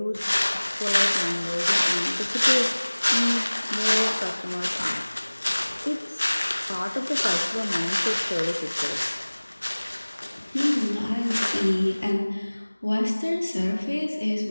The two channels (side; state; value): both; inverted; correlation -1.00